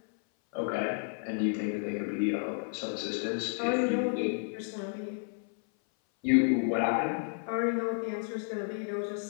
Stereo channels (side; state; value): right; silent; 57 dB below the other